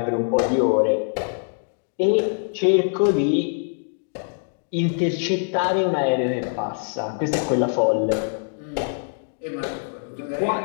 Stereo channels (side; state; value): right; silent; digital silence